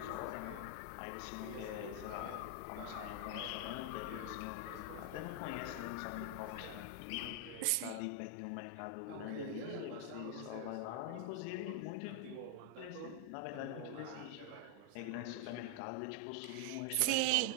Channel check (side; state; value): both; different; correlation 0.00